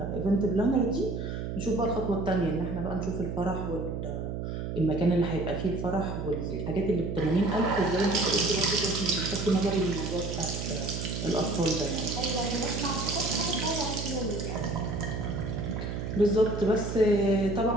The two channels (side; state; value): right; noise; hum, 4 dB below the sound